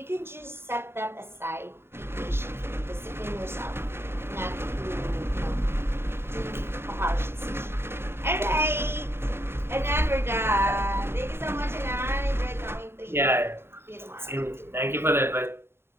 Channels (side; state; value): left; late; 0.11 ms